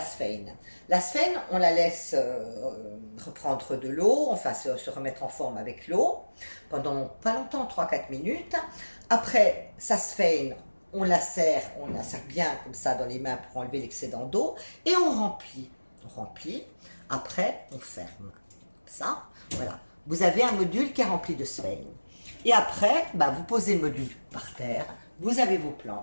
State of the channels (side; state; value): both; inverted; correlation -1.00